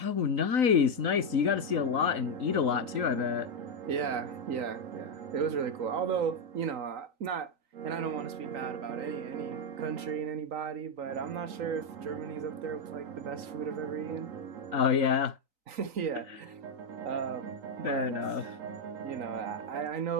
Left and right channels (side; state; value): left; late; 3.9 ms